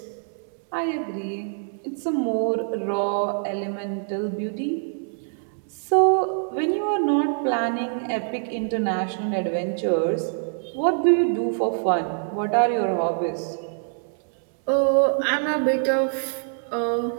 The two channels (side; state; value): left; silent; 62 dB below the other